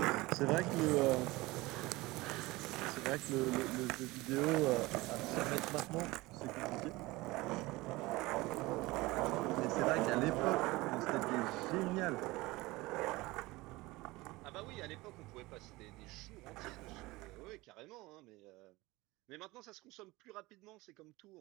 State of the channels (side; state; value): left; quieter; 20.9 dB